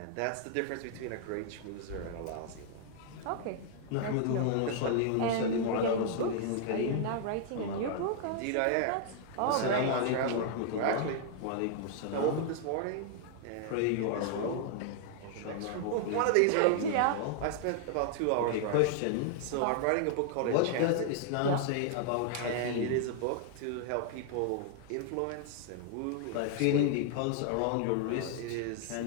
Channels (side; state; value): both; different; correlation 0.00